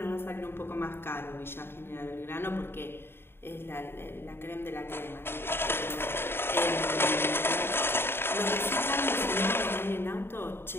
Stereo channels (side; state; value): right; late; 0.11 ms